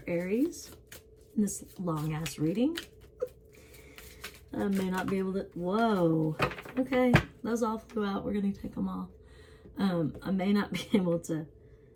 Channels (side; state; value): both; identical; correlation 1.00